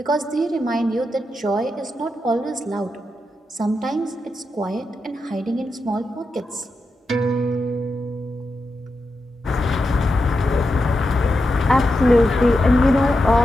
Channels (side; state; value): both; normal; correlation 0.87